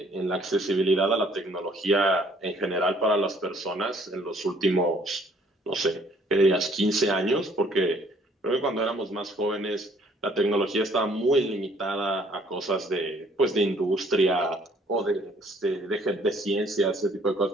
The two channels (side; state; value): both; normal; correlation 0.61